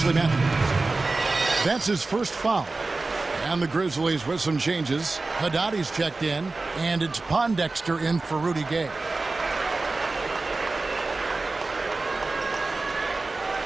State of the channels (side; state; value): left; quieter; 3.5 dB